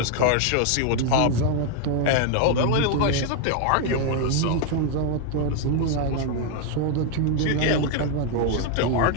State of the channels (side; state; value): both; different; correlation 0.00